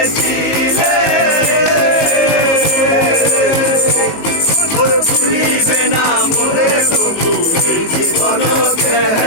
মোরে ভুলিবে না মোরে প্রভু এই জীবন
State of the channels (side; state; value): right; late; 18 ms